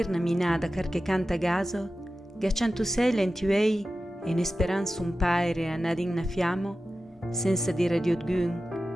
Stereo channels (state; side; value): normal; both; correlation 0.93